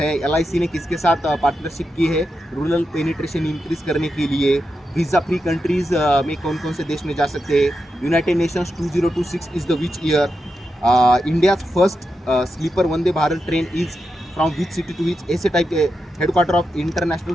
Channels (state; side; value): normal; both; correlation 0.87